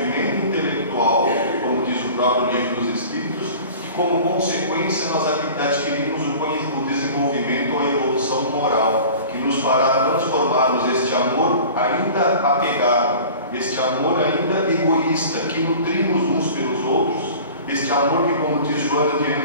intelectual, como diz o próprio Livro dos Espíritos, e como consequência nós adquirimos o desenvolvimento ou a evolução moral, que e nos fará transformarmos este amor ainda apegado, este amor ainda egoísta, que nutrimos uns pelos outros, este amor que, como diz Joana de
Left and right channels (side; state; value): both; inverted; correlation -0.41